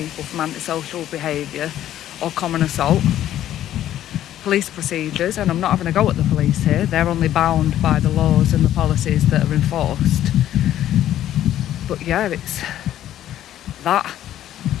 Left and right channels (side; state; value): right; quieter; 12.1 dB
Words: from antisocial behaviour or common assault. Police procedures, and I'm not having a go at the police here, they're only bound by the laws and the policies that are enforced. But yeah, it's that,